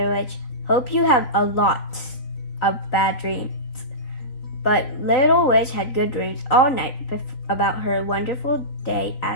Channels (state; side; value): late; right; 4.1 ms